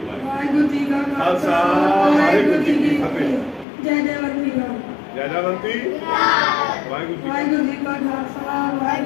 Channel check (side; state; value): right; drops out; at 3.7 s